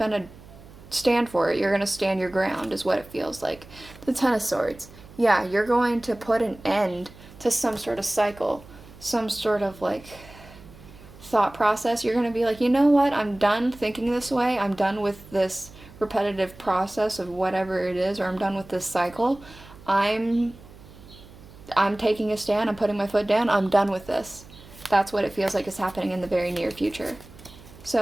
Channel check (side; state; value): right; noise; hum, 20 dB below the sound